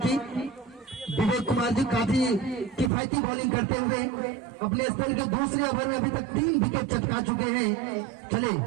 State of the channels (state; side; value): drops out; left; at 2.9 s